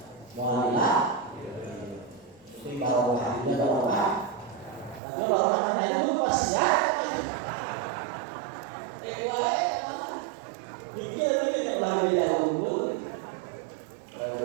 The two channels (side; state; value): left; drops out; at 5.0 s